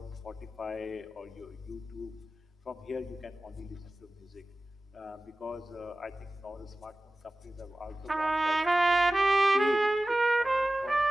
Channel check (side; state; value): both; normal; correlation 0.96